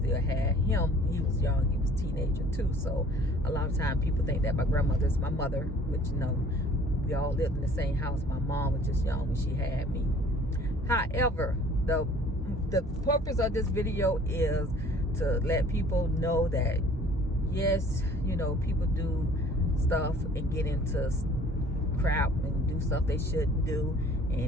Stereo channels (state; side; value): normal; both; correlation 0.53